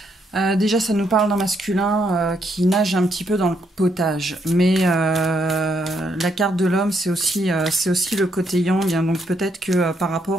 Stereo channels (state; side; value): normal; both; correlation 0.75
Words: Déjà, ça nous parle d'un masculin qui nage un petit peu dans le potage. Mais la carte de l'homme, c'est aussi le côté yang. Hein, donc peut-être que par